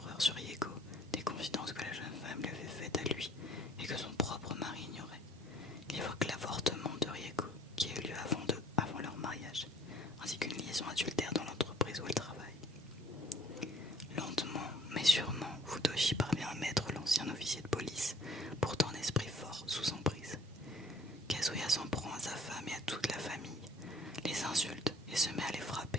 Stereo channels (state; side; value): normal; both; correlation 0.57